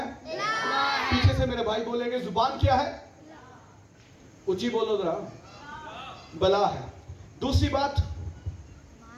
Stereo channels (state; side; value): identical; both; correlation 1.00